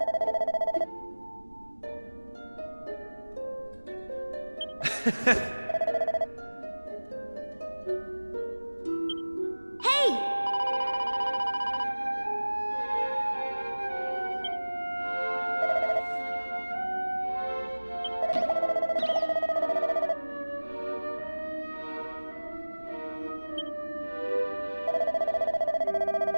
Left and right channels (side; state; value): both; inverted; correlation -1.00